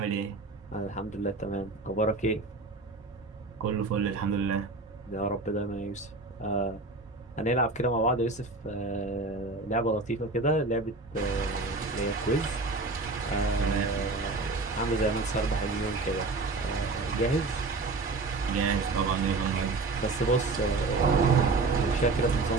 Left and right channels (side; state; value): left; quieter; 3.5 dB